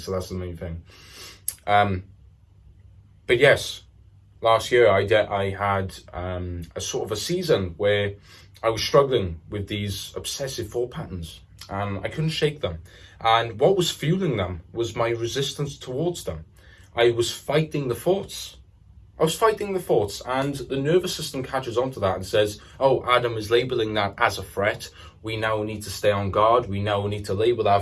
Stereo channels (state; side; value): identical; both; correlation 1.00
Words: that's the main thing. But yes, last year I had a sort of a season where I was struggling with these obsessive thought patterns, and I couldn't shake them. And what was fueling them was my resistance towards them. I was fighting the thoughts. And the nervous system catches on to that and says, oh, Adam is labeling that as a threat. We now need to stay on guard. We now need to label